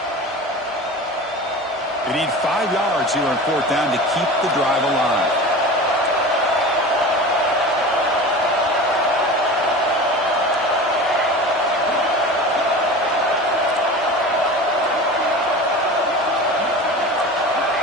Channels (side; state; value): both; normal; correlation 0.33